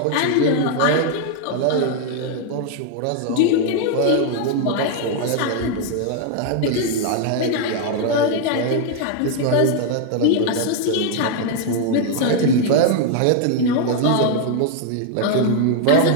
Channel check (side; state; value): both; different; correlation 0.00